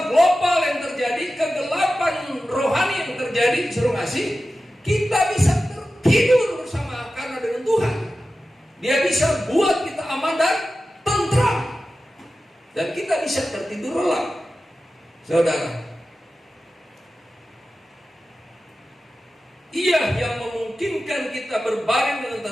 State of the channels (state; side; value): normal; both; correlation 0.94